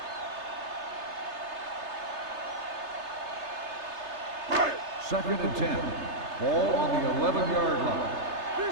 Second and 10. Ball on the 11-yard line. Do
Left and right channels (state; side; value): late; left; 3.3 ms